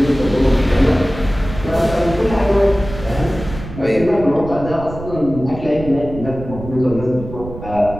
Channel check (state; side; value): noise; right; rumble, 11 dB below the sound